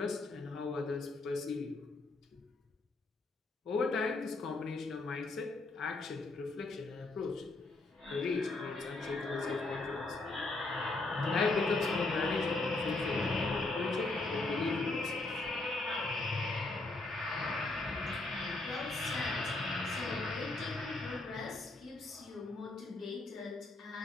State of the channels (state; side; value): quieter; right; 3.2 dB